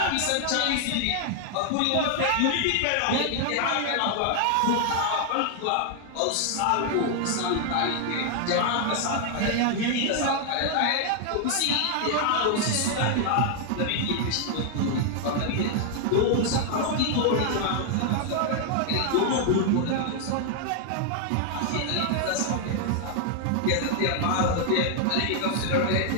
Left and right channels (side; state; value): both; different; correlation 0.00